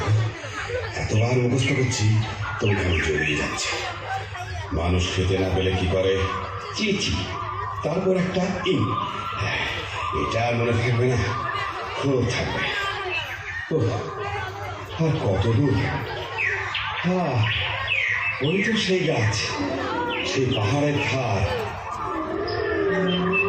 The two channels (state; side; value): identical; both; correlation 1.00